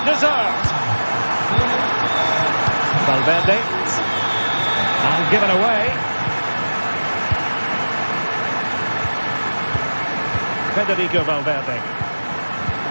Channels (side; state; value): both; inverted; correlation -1.00